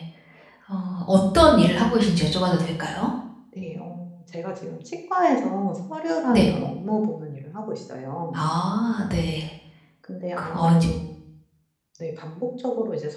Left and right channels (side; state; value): both; identical; correlation 1.00